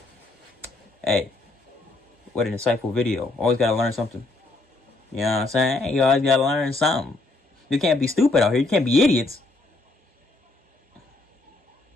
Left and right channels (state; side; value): quieter; right; 3.1 dB